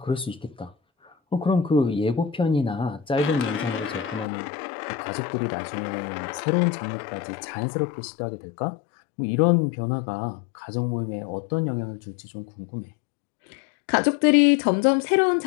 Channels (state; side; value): drops out; right; at 4.2 s